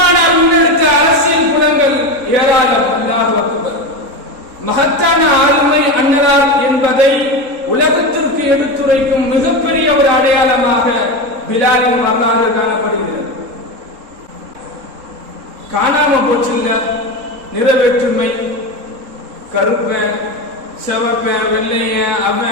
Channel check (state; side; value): late; left; 3.7 ms